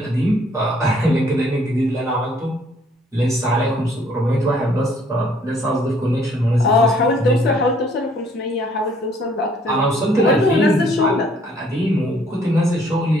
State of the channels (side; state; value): both; normal; correlation 0.62